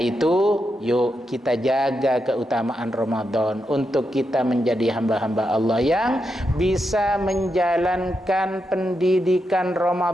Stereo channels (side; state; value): both; normal; correlation 0.85